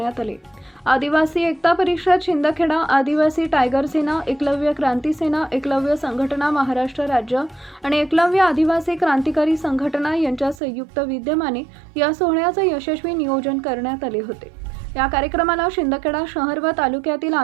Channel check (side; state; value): left; drops out; at 10.6 s